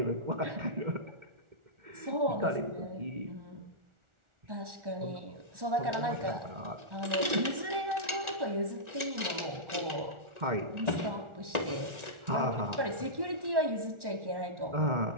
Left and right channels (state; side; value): late; left; 1.4 ms